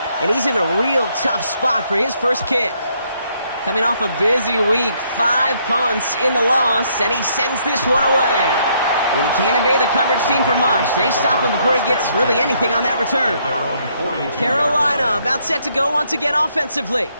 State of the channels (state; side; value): inverted; both; correlation -0.70